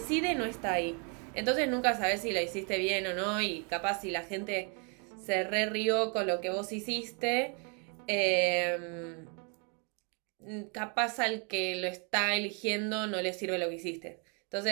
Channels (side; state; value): left; quieter; 35.5 dB